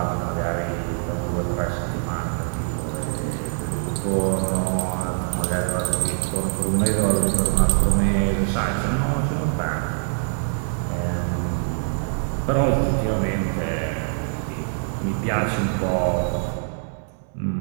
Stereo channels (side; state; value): left; silent; 63 dB below the other